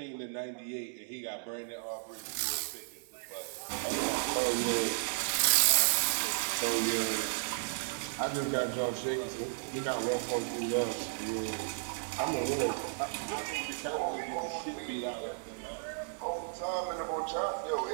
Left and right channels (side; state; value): left; silent; digital silence